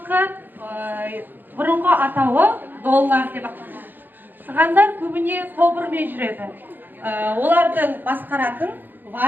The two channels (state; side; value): late; left; 0.090 ms